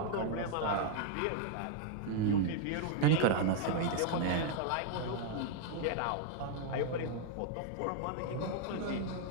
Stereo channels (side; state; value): both; different; correlation 0.00